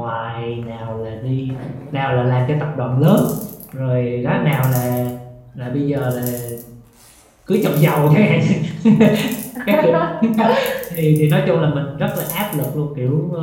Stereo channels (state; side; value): identical; both; correlation 1.00